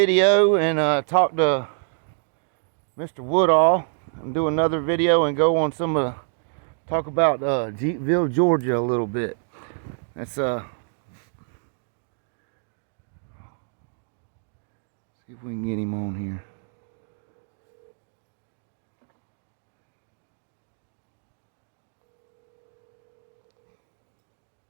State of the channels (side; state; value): left; silent; digital silence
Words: and talk to Mr. Woodall and do another video and go on talk about Jeepville, Georgia a little bit. Let's see if we can get him on here.